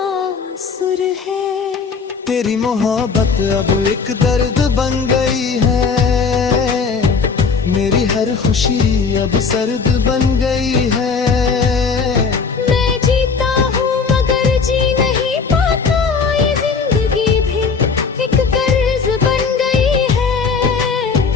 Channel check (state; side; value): quieter; right; 5.2 dB